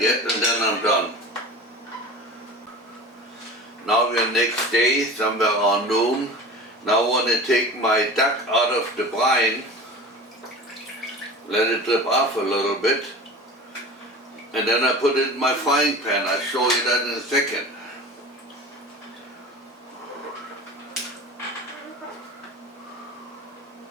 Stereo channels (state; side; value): normal; both; correlation 0.35